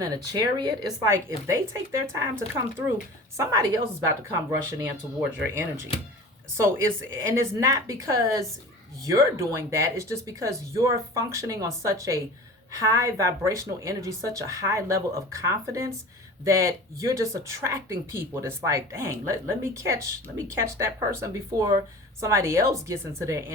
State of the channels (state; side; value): normal; both; correlation 0.38